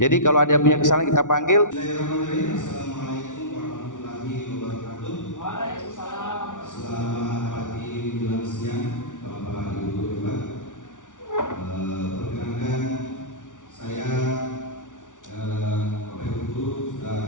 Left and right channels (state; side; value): late; right; 0.87 ms